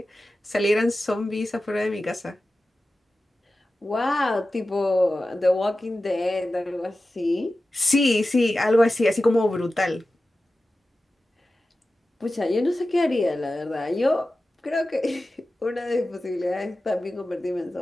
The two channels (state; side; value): normal; both; correlation 0.95